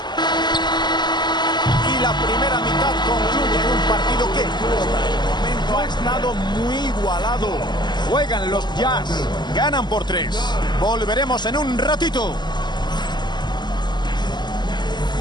Y la primera mitad concluye en un partido que hasta el momento ha estado muy igualado. Juegan los Jazz. Ganan por 3. Volveremos en un ratito.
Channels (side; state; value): right; late; 0.21 ms